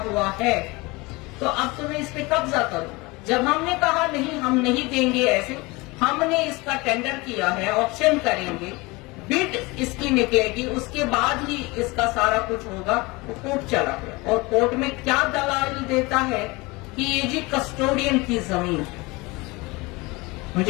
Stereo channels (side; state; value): right; quieter; 24.0 dB